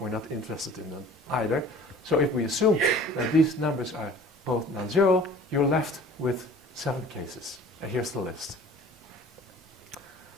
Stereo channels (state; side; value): normal; both; correlation 0.47